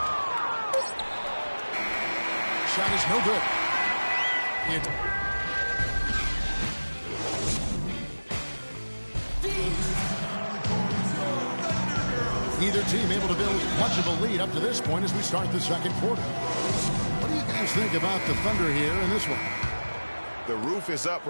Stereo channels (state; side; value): inverted; both; correlation -1.00